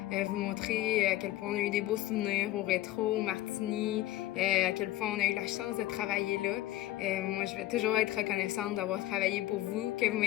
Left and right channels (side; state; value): right; quieter; 15.6 dB